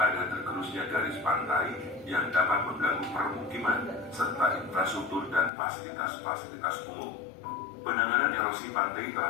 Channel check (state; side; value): drops out; right; at 5.5 s